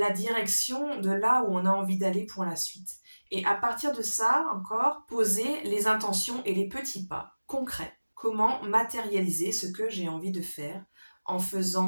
direction de là où on a envie d'aller pour la suite. Et à partir de ça, encore, poser les intentions et les petits pas concrets. Comment matérialiser ce que j'ai envie de faire en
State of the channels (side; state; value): both; inverted; correlation -1.00